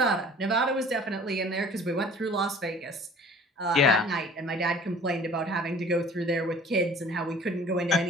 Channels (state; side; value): normal; both; correlation 0.48